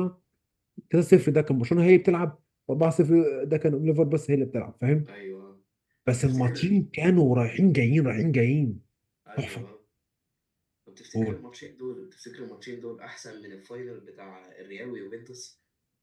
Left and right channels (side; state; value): both; identical; correlation 1.00